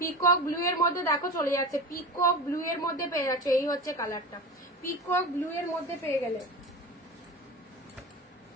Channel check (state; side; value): normal; both; correlation 0.30